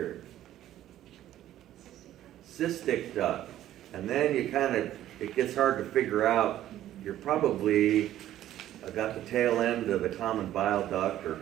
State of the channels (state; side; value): quieter; left; 12.8 dB